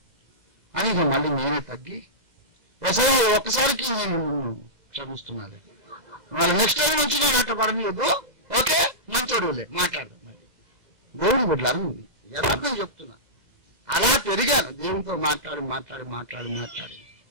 అని ఇక మళ్ళీ నేనే తగ్గి ఒక్కసారికి నేను క్షమిస్తున్నాను. మళ్ళీ నెక్స్ట్ టైం నుంచి నేను అట్లా పడలేదు. ఓకే మంచోడులే మాట్లాడదాం. దేవుని బిడ్డలు యథార్థం చెప్తున్నా. అలా పెరిగాను దేవునితో మాట్లాడి మాట్లాడి మాట్లాడి మాట్లాడి.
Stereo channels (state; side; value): late; left; 2.0 ms